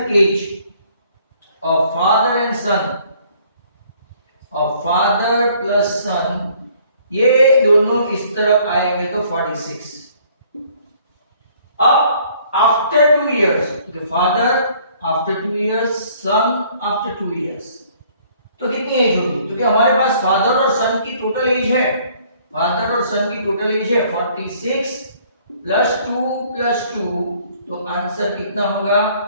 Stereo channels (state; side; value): inverted; both; correlation -0.60